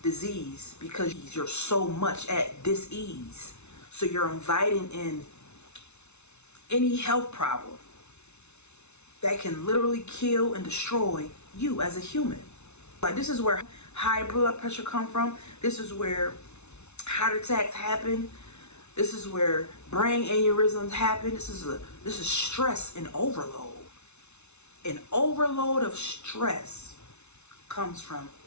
disease because you're so much at dis-ease. So you're inviting in any health problem that can literally kill and destroy you as a human. Like, this is where high blood pressure come from. This is where heart attacks happen. This is where brain aneurysms happen. This is stress and overload. An overload of stress comes from,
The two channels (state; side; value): late; right; 0.81 ms